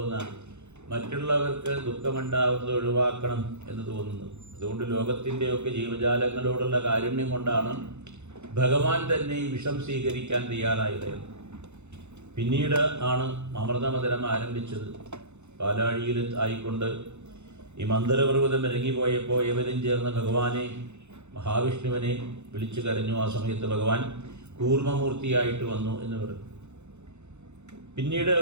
മറ്റുള്ളവർക്ക് ദുഃഖമുണ്ടാവുന്നത് ഒഴിവാക്കണം എന്ന് തോന്നുന്നത്. അതുകൊണ്ട് ലോകത്തിൻ്റെയൊക്കെ ജീവജാലങ്ങളോടുള്ള കാരുണ്യം കൊണ്ടാണ് ഭഗവാൻ തന്നെ ഈ വിഷം സ്വീകരിക്കാൻ തയ്യാറായത്. പിന്നീട് ആണ് അമൃതമതനം ആരംഭിച്ചത്. പാലാഴിയിൽ ആയിക്കൊണ്ട് ഈ മന്ദരപർവ്വതം ഇറങ്ങിപ്പോയപ്പോൾ ഇവരും ചേർന്ന് ഭഗവാനെ മഹാവിഷ്ണുവിനെ വിളിച്ചു കരഞ്ഞു. ആ സമയത്ത് ഭഗവാൻ കൂർമ്മമൂർത്തിയായിട്ട് വന്നു എന്ന് പറഞ്ഞു. പിന്നീട്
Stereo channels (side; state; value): left; late; 0.82 ms